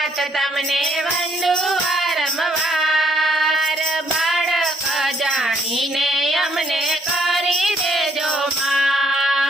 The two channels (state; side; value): normal; both; correlation 0.68